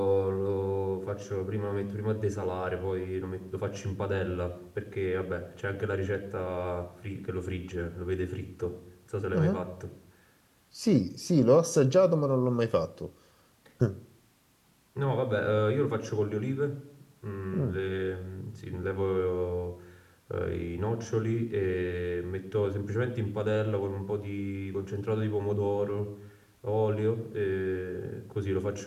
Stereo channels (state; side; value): identical; both; correlation 1.00